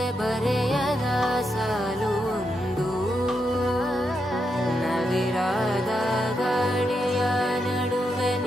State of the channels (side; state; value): both; normal; correlation 0.83